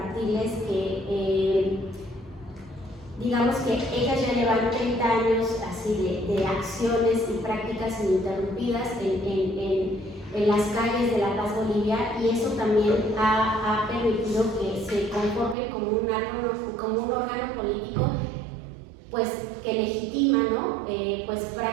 que, digamos que ellas ya llevan 30 años así de acciones y prácticas ininterrumpidas en las calles de La Paz, Bolivia, y eso también ha permitido que se conforme como un órgano político pues que legitima, ¿no? Pues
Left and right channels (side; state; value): left; drops out; at 15.6 s